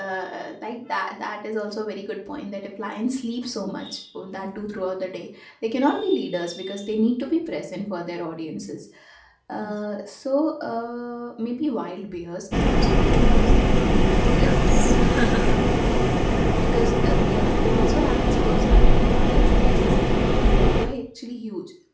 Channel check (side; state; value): both; identical; correlation 1.00